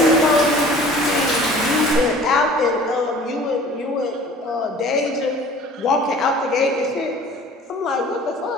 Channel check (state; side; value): normal; both; correlation 0.47